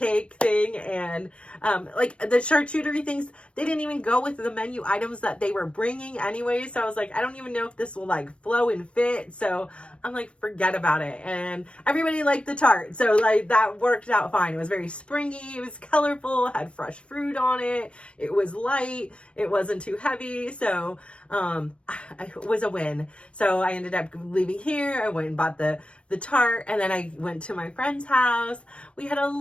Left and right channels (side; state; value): right; late; 0.060 ms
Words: thing. And like the charcuterie things, they didn't even go with the menu items that they were bringing anyway. So I was like, I don't even know if this will like flow and fit. So I'm like, forget about it. And everybody liked the tart. So like that worked out fine. It was very springy. It was colorful, had fresh fruit on it. It was light. It wasn't too heavy. So it was a win. So I ended up leaving here. I went and bought the tart, and then I went to my friend's house. We had a